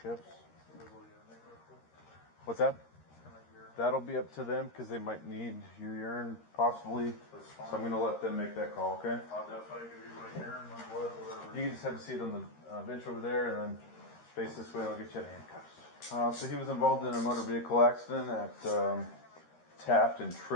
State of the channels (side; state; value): right; late; 13 ms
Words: What's that? That'll be up to them because they might need your urine possibly. So I'm going to let them make that call, okay? I'll definitely give you my urine, my blood, whatever. You can just have a seat on the bench over there and then face this way and I'll get you out of handcuffs. So he was involved in a motor vehicle accident at Taft and